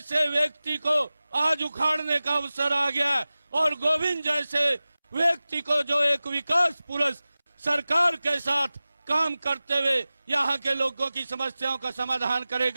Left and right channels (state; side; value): inverted; both; correlation -0.97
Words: व्यक्ति को आज उखाड़ने का अवसर आ गया और गोविंद जैसे व्यक्ति को जो एक विकास पुरुष सरकार के साथ काम करते हुए यहाँ के लोगों की समस्याओं का समाधान